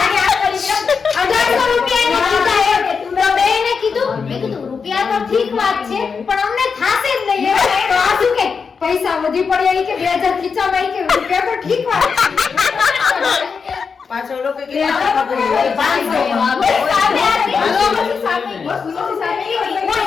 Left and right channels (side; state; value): right; quieter; 5.6 dB